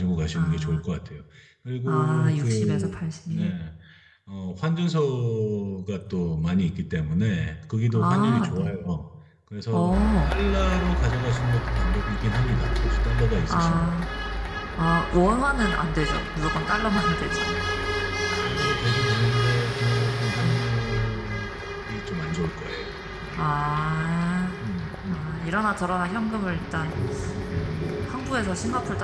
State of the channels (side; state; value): both; identical; correlation 1.00